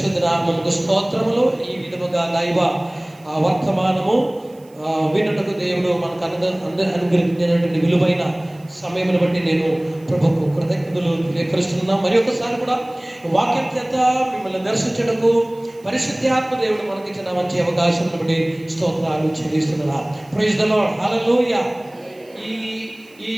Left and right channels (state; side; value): noise; right; hiss, 29 dB below the sound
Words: నామమునకు స్తోత్రములు. ఈ విధముగా దైవ వర్తమానము వినుటకు దేవుడు మనకు అనుగ్రహించినటువంటి విలువైన సమయమును బట్టి నేను ప్రభుకు కృతజ్ఞతలు తెలియపరుస్తున్నాను. మరి ఒకసారి కూడా వాక్యం చేత మిమ్మల్ని దర్శించడకు పరిశుద్ధాత్మ దేవుడు మనకిచ్చిన మంచి అవకాశం బట్టి స్తోత్రాలు చెల్లిస్తున్నా. ప్రైజ్ ది లార్డ్, హల్లెలూయా. ఈ